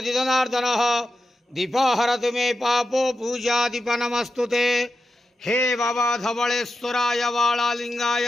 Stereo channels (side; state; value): both; normal; correlation 0.90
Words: जनार्दनः दीप हरतु मे पापो पूजा दीप नमस्तुते। हे बाबा धवलेश्वराय